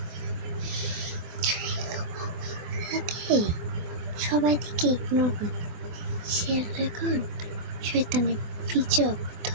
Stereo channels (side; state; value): left; late; 25 ms